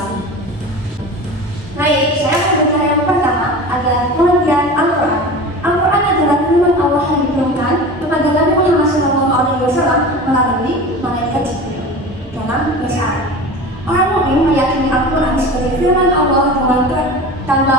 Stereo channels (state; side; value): normal; both; correlation 0.33